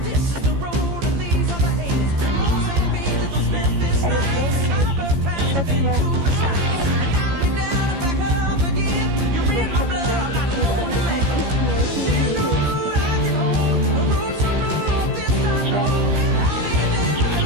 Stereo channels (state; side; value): late; left; 15 ms